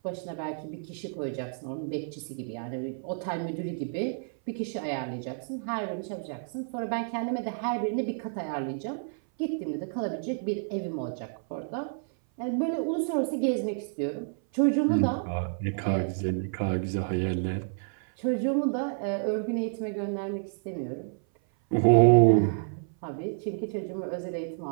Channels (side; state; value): left; silent; 56 dB below the other